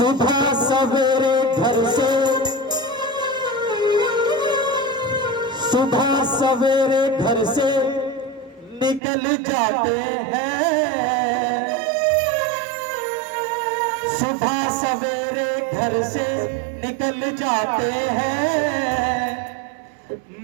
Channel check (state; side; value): drops out; left; at 9.0 s